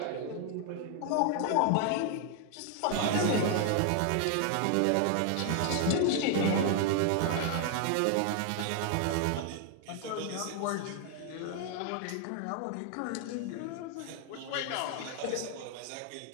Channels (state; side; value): different; both; correlation 0.00